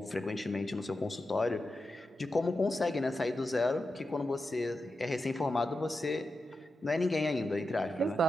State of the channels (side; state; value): both; normal; correlation 0.89